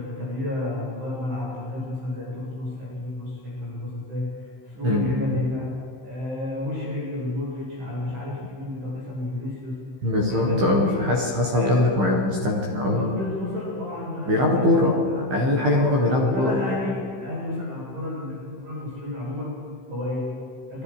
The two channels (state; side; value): late; left; 15 ms